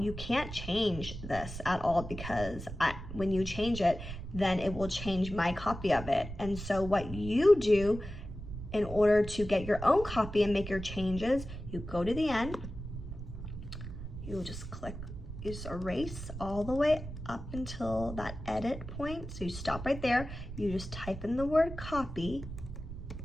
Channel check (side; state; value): right; noise; rumble, 9 dB below the sound